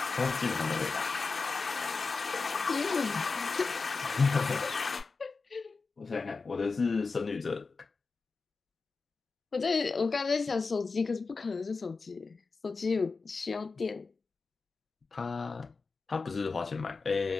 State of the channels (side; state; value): right; quieter; 4.3 dB